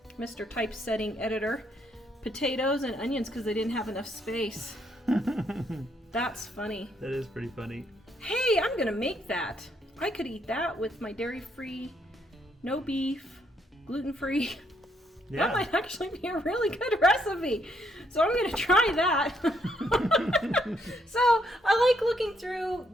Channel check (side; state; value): both; normal; correlation 0.73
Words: Mr. Typesetting Editor. Potatoes and onions because they didn't have enough space. That's funny. That is pretty funny. Hey, I'm gonna make that. I could eat that with my dairy-free, no beef, gluten-free. Yeah. That might actually be a really good recipe. So I'm gonna try that. So I like looking through